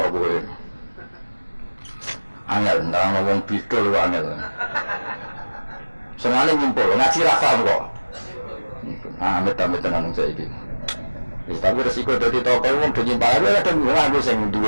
kowe. Angel ndang wong bidol kok angel. Senane ngumpul ngaji ra paham kok. Ah, amit-amit tenan saiki. Wis tapi resiko dadi tokoh wong do nyimpal ae kadang aku sing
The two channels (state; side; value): inverted; both; correlation -1.00